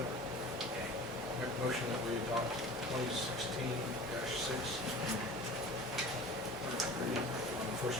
Okay. Make a motion that we adopt 2016-6 on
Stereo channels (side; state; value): both; normal; correlation 0.40